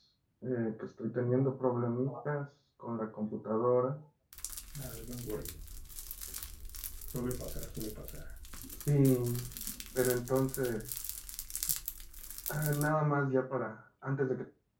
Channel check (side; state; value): both; identical; correlation 1.00